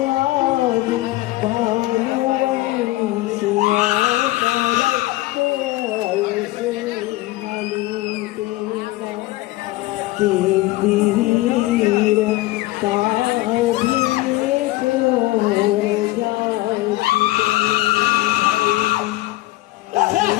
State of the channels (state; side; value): quieter; right; 18.6 dB